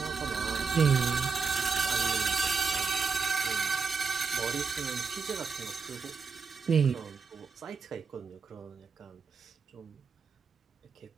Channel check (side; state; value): left; quieter; 5.1 dB